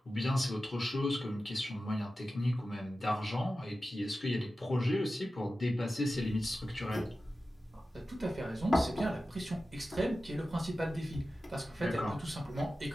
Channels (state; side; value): normal; both; correlation 0.94